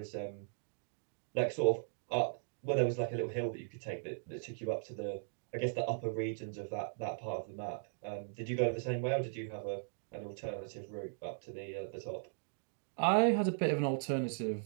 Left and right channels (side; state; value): left; silent; digital silence